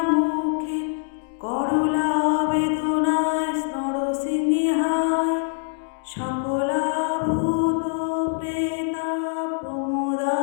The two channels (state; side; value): silent; right; digital silence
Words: করলা বেদনায় নরসিংহায় সকলাভূত প্রেতা